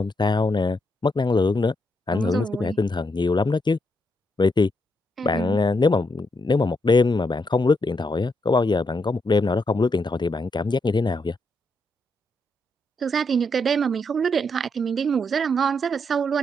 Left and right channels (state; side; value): normal; both; correlation 0.79